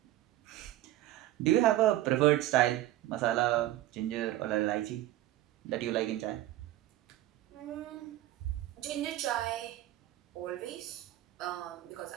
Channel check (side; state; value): left; quieter; 14.7 dB